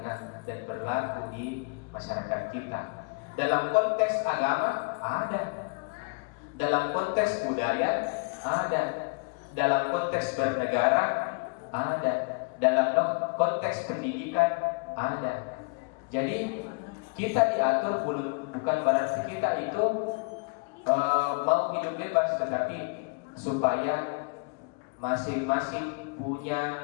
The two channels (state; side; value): quieter; right; 34.3 dB